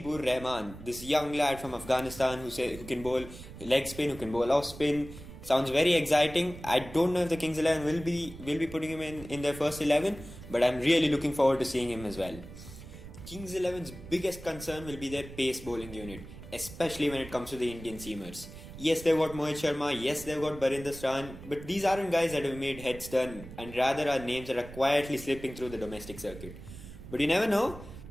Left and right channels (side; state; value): right; noise; rumble, 14 dB below the sound